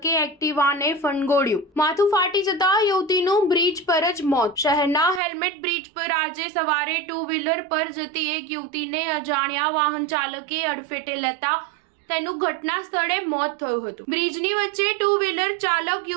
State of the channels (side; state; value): left; drops out; at 5.2 s